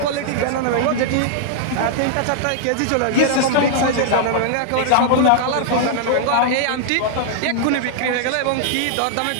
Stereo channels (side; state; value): both; different; correlation -0.01